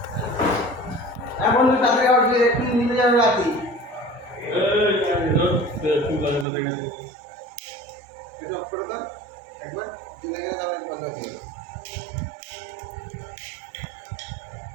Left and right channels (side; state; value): left; drops out; at 6.5 s